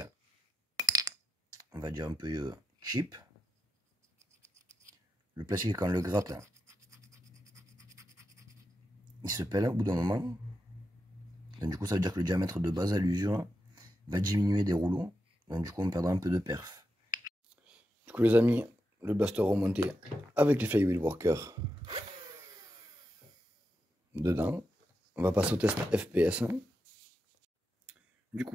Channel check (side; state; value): both; normal; correlation 0.87